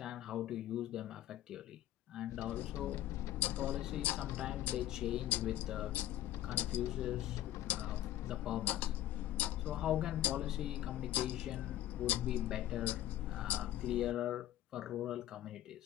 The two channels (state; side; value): quieter; right; 13.3 dB